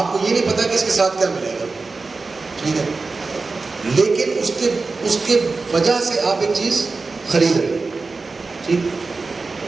کو یہ نہیں پتا کہ اس کے ساتھ کیا ملے گا. ٹھیک ہے. لیکن اس کے وجہ سے آپ ایک چیز خرید رہے ہیں. ٹھیک.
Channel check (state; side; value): quieter; left; 4.0 dB